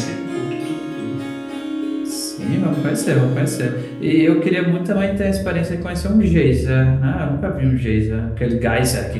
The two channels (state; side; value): identical; both; correlation 1.00